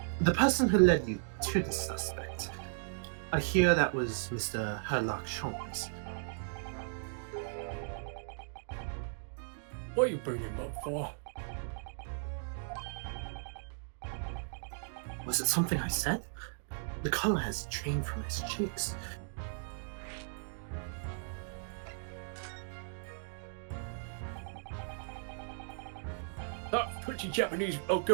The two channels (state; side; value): silent; left; digital silence